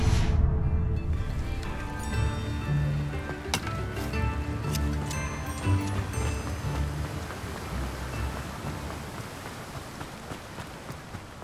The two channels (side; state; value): both; identical; correlation 1.00